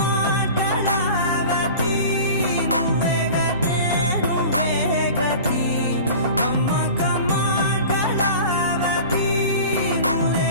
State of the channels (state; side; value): inverted; both; correlation -0.39